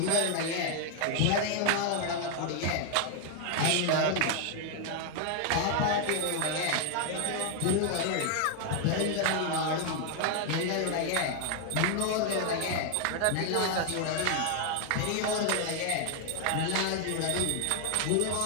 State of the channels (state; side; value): different; both; correlation 0.01